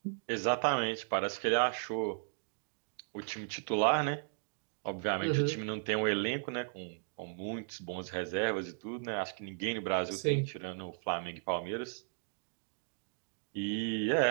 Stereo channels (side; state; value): left; silent; digital silence